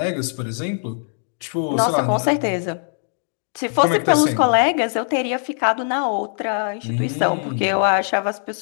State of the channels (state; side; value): silent; right; 62 dB below the other